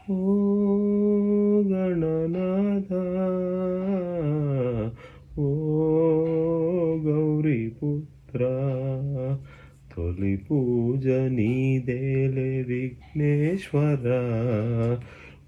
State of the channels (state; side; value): identical; both; correlation 1.00